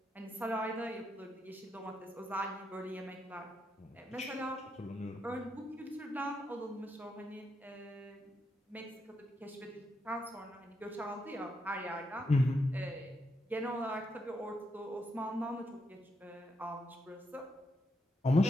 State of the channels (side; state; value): both; normal; correlation 0.81